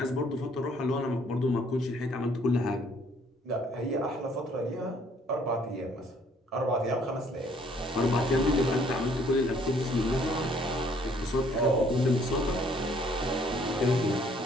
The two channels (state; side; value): normal; both; correlation 0.62